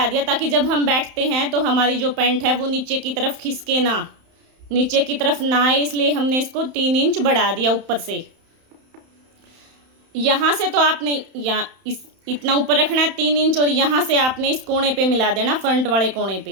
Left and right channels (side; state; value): left; late; 31 ms